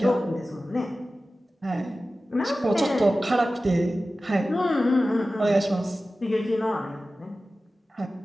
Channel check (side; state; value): both; normal; correlation 0.95